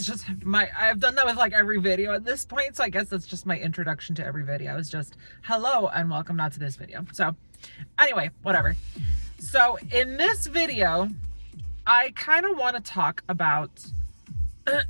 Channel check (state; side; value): inverted; both; correlation -1.00